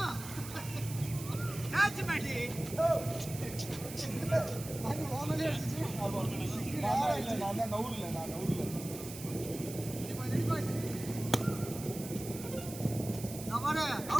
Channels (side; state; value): right; noise; hiss, 12 dB below the sound